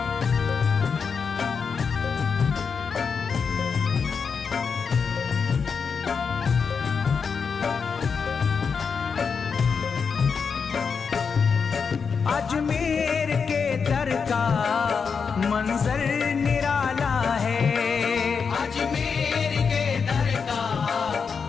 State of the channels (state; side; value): quieter; right; 5.8 dB